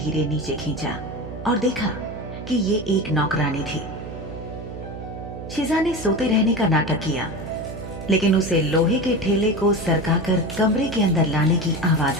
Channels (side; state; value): right; noise; hum, 10 dB below the sound